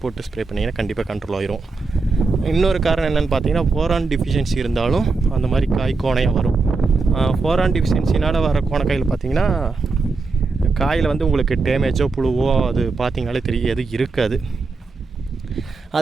போட்டு ஸ்ப்ரே பண்ணிங்கன்னா கண்டிப்பாக கண்ட்ரோல் ஆயிரும். இன்னொரு காரணம் என்னென்னு பார்த்தீங்கன்னா போரான் டிஃபிஷியன்சி இருந்தாலும் அந்த மாதிரி காய் கோணையாக வரும். போரான் டிஃபிஷியன்சினால் வர கோணக்காயில் பார்த்திங்கன்னா காயில் வந்து உங்களுக்கு டேமேஜோ புழுவோ அது பார்த்திங்கனாலே தெரியும், எது இருக்காது.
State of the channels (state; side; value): quieter; left; 4.0 dB